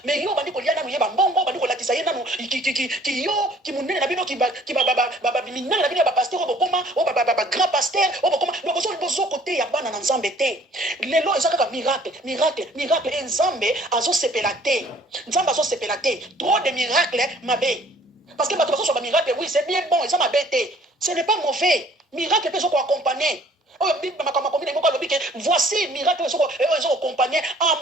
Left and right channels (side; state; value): both; normal; correlation 0.56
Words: Mais yo bandi ko liana mu ye ba mbongo, bandi ko latisa ye nanu ki yo ki munene na bino ki ba minene na bino ba pasteur obokoma, ba grand pasteur obokoma. Donc bozo côté ya bana na Nzambe te. Lelo ezaka miracle et Nzambe azo sepelate. Nzambe azo sepelate. Trop de miracles mabe. Parce que bato baso ba miracle oui, c'est bien bon, et ça m'a bêté. Ce n'est pas mauvais. Miracle peut être accompagné. Voici miracle peut accompagné